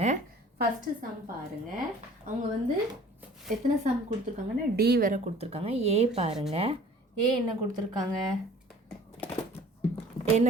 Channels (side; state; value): both; normal; correlation 0.49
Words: ஃபஸ்ட்டு சம் பாருங்கள். அவங்க வந்து எத்தனை சம் கொடுத்துருக்காங்கன்னா டி வேறு கொடுத்துருக்காங்க. ஏ பாருங்கள். ஏ என்ன கொடுத்துருக்காங்க,